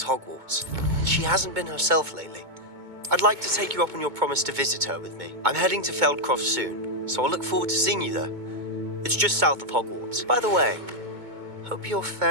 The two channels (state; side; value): late; left; 2.2 ms